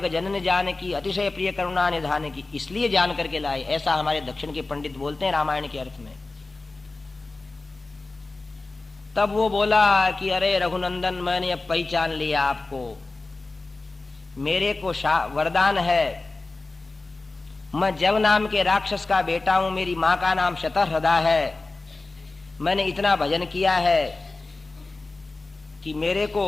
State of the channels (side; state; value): right; quieter; 3.3 dB